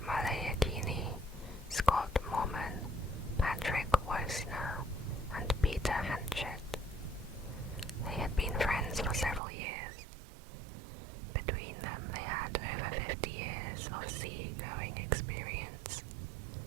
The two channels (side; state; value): left; drops out; at 9.4 s